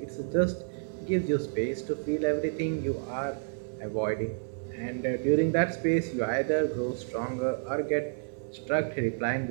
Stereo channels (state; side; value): silent; left; 58 dB below the other